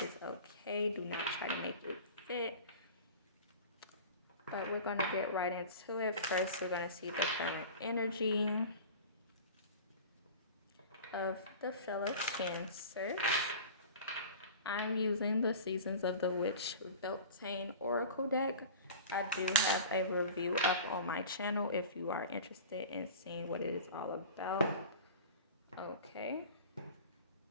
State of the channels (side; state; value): both; inverted; correlation -0.37